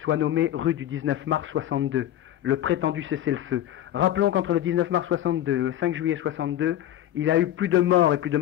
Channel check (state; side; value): quieter; right; 12.4 dB